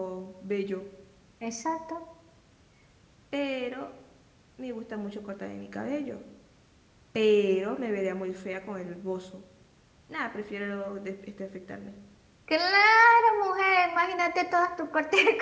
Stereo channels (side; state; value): both; identical; correlation 1.00